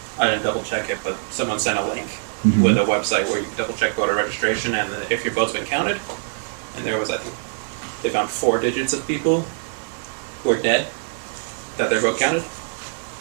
I didn't double check it, but someone sent a link with a website where you can double check voter registration, and if your vote's been counted, and there was, I think, they found 4 digits of people who are dead, that their vote counted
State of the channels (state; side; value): silent; left; 63 dB below the other